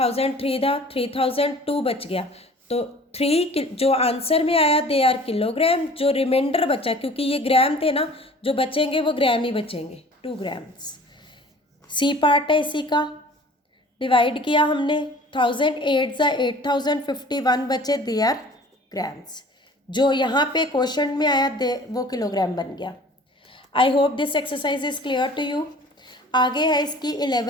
था, 3002 बच गया। तो 3 जो आंसर में आया दे आर किलोग्राम। जो रिमाइंडर बचा, क्योंकि ये ग्राम थे ना, जो बचेंगे वो ग्राम ही बचेंगे, 2 ग्राम्स। सी पार्ट है इसी का, डिवाइड किया हमने, 1000 8 ज़ा 8051 बचे, दे आर ग्राम्स। जो यहाँ पे क्वेश्चन में आया दे वो किलोग्राम बन गया। I hope this exercise is clear to you. आगे है इसकी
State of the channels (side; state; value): both; normal; correlation 0.47